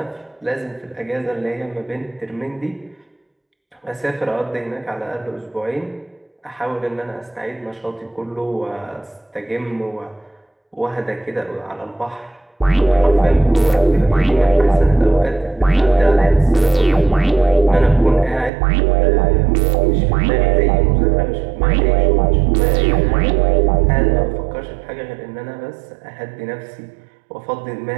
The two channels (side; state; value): left; drops out; at 18.5 s